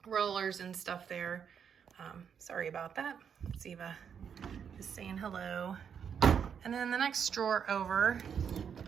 rollers and stuff there. Sorry about that. Ziva is saying hello. And then the next drawer over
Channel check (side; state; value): left; quieter; 7.5 dB